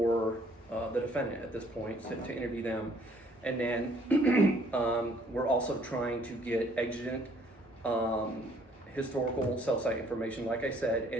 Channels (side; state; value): both; normal; correlation 0.62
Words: the defendant at this point to interview them, and then we're also trying to get exigent historical cell site information, like I said.